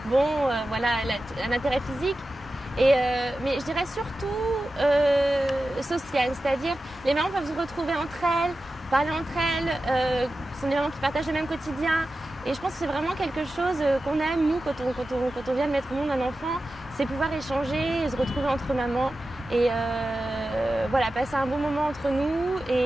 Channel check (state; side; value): normal; both; correlation 0.93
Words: Voilà, un intérêt physique. Mais je dirais surtout social, c'est-à-dire les mamans peuvent se retrouver entre elles, parler entre elles, ce sont des mamans qui partagent le même quotidien. Et je pense que c'est vraiment quelque chose qu'on aime, nous, quand on vient de mettre au monde un enfant, c'est pouvoir échanger, se retrouver entre mamans et voilà, passer un bon moment entre nous.